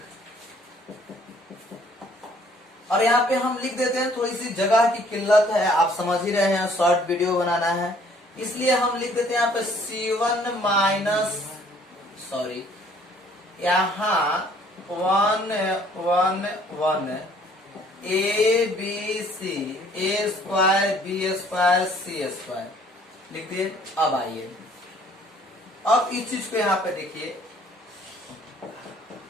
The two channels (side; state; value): both; normal; correlation 0.59